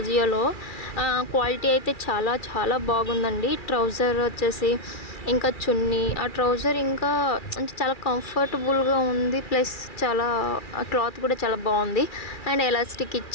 క్వాలిటీ అయితే చాలా చాలా బాగుందండి. ట్రౌజర్ వచ్చేసి ఇంకా చున్నీ, ఆ ట్రౌజర్ ఇంకా అంటే చాలా కంఫర్టబుల్గా ఉంది. ప్లస్ చాలా క్లాత్ కూడా చాలా బాగుంది. అండ్ ఎలాస్టిక్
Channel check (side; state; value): right; late; 2.4 ms